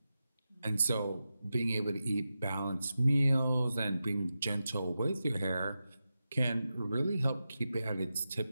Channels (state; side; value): inverted; both; correlation -0.91